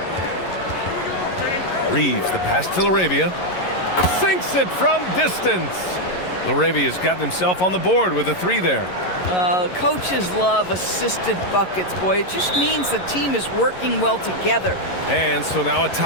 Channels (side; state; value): right; late; 11 ms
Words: Reeves, the pass to Laravia. Sinks it from distance. Laravia's gotten himself on the board with a 3 there. Coaches love assisted buckets, boy. It just means the team is working well together. And so now a